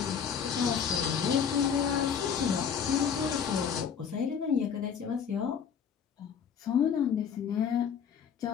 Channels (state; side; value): quieter; right; 7.3 dB